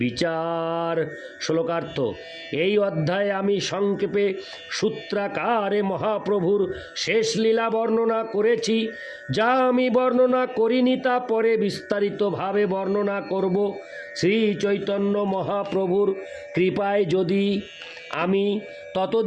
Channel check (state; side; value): identical; both; correlation 1.00